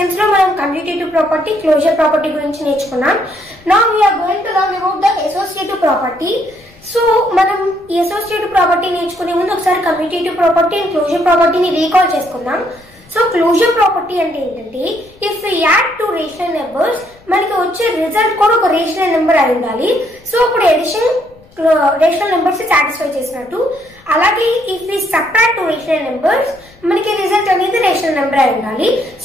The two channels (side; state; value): left; noise; rumble, 28 dB below the sound